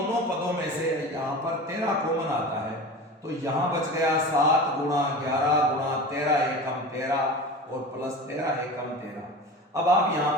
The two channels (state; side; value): normal; both; correlation 0.32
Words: पदों में से यहां पर 13 कॉमन आता है, तो यहां बच गया 7 गुणा 11 गुणा 13 एकम 13 और प्लस 13 एकम 13। अब आप यहां